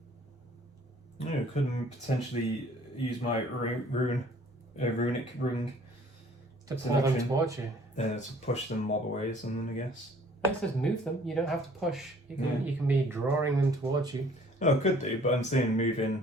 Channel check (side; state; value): both; normal; correlation 0.55